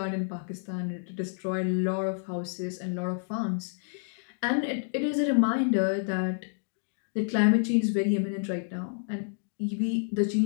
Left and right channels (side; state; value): right; silent; digital silence